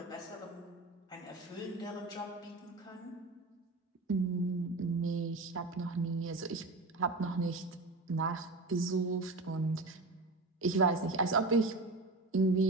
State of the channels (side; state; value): left; quieter; 3.2 dB